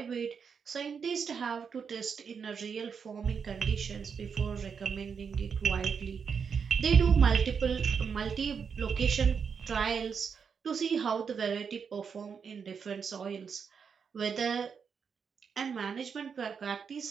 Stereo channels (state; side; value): quieter; left; 6.4 dB